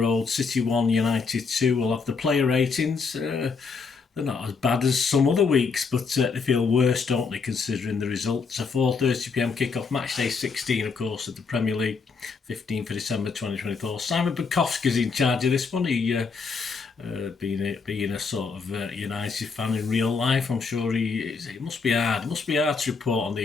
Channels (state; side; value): quieter; right; 5.0 dB